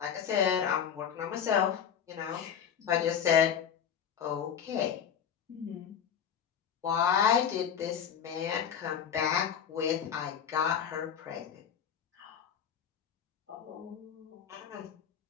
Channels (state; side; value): quieter; right; 8.3 dB